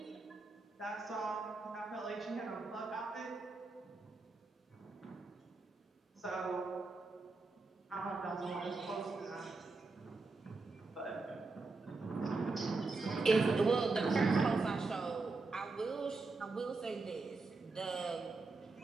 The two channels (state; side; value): quieter; left; 3.7 dB